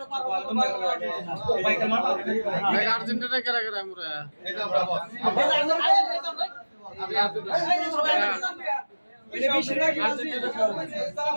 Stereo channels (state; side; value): inverted; both; correlation -1.00